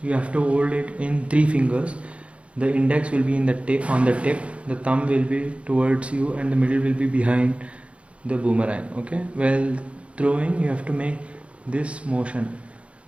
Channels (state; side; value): late; left; 0.061 ms